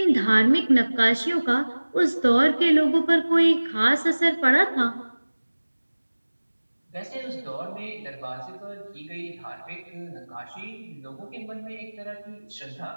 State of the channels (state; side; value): inverted; both; correlation -1.00